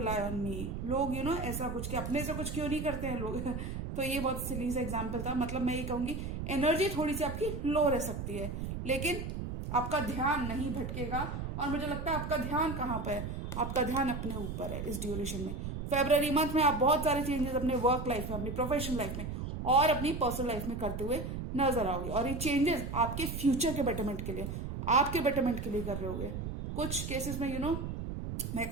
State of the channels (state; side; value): noise; right; rumble, 5 dB below the sound